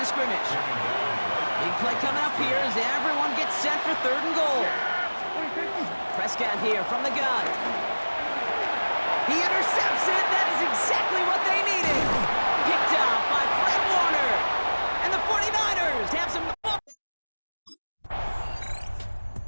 scrimmage. Big play coming up here as everyone gets set for third and goal. Prescott here from the gun. He intercepts it. That is exactly what they needed. Picked off by Fred Warner. And the 49ers have some...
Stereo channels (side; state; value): both; inverted; correlation -1.00